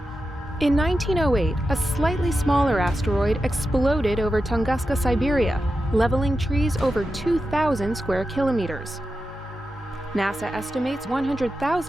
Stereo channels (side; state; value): both; normal; correlation 0.90